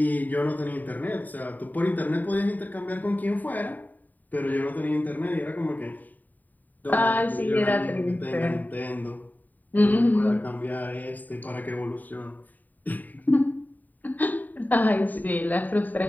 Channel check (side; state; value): right; late; 0.084 ms